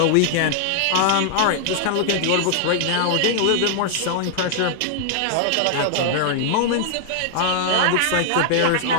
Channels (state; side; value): different; both; correlation 0.00